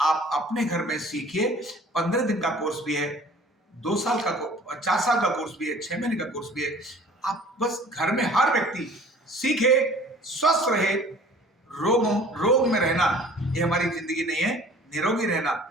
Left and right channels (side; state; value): both; normal; correlation 0.49